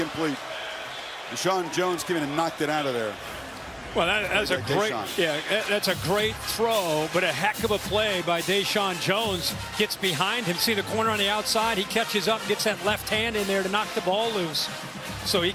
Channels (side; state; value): both; identical; correlation 1.00